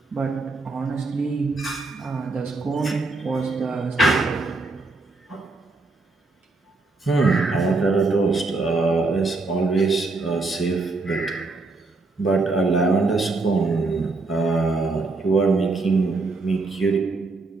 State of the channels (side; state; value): left; quieter; 3.5 dB